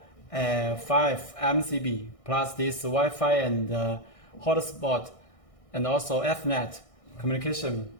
5 MCB, plus this Wi-Fi and hotspot, and also Ethernet communication.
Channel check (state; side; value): late; right; 1.6 ms